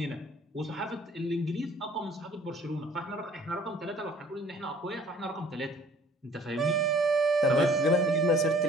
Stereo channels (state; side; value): normal; both; correlation 0.54